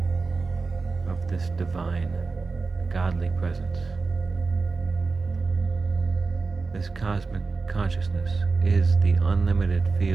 of this divine, godly presence. This cosmic consciousness is the unlimited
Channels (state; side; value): quieter; left; 4.2 dB